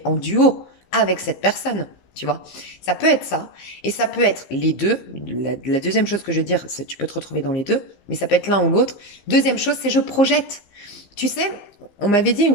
en duo avec cette personne. Tu vois, ça peut être ça, et ça peut être les deux. La deuxième chose que je veux dire, c'est tu peux te retrouver dans les deux, mais ça peut être l'un ou l'autre. Deuxième chose, c'est je projette. Tu sais, on m'avait dit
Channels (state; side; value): late; right; 15 ms